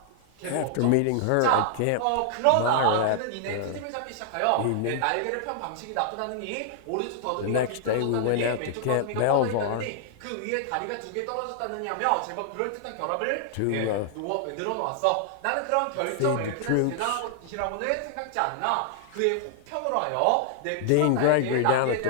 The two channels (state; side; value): different; both; correlation -0.01